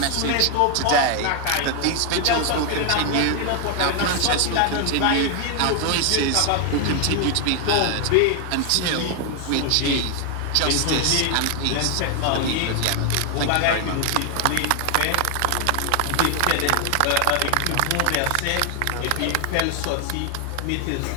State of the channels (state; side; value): different; both; correlation 0.00